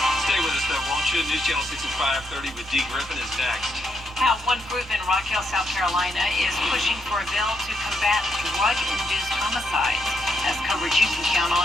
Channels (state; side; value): normal; both; correlation 0.78